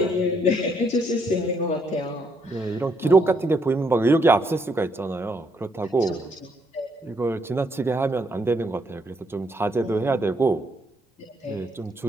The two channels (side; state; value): both; normal; correlation 0.73